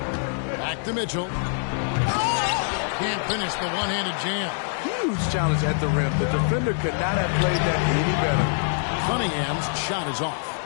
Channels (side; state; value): right; silent; digital silence